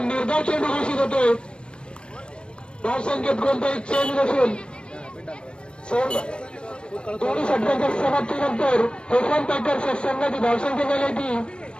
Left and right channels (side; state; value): right; late; 0.056 ms